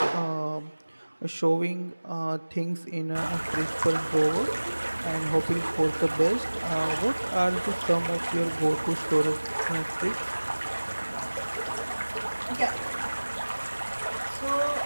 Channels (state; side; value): inverted; both; correlation -1.00